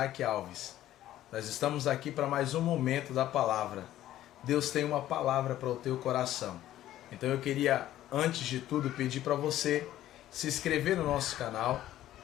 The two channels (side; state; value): right; quieter; 13.3 dB